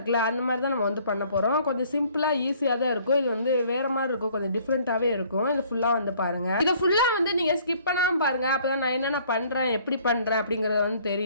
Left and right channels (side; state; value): both; inverted; correlation -0.58